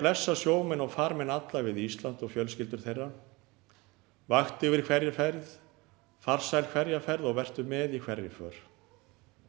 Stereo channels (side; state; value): left; quieter; 24.3 dB